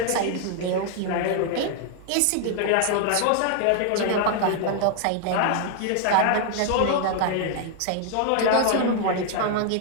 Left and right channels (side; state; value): both; different; correlation 0.00